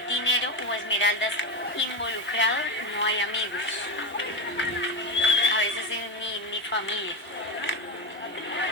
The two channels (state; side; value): normal; both; correlation 0.15